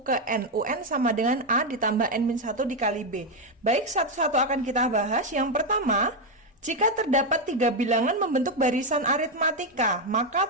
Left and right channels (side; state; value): both; normal; correlation 0.05